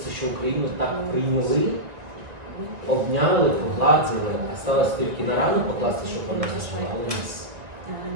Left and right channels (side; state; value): left; late; 2.0 ms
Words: що Україну так прийняли, обняли, погладили, сталося тільки на рану покласти, щоб вона зажила, але